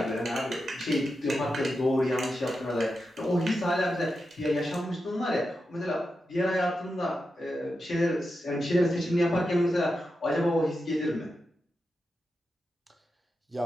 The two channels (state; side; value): normal; both; correlation 0.89